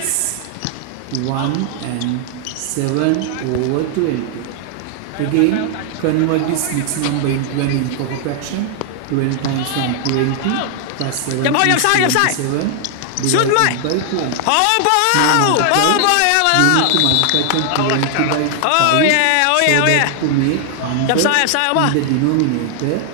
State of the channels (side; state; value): both; different; correlation 0.00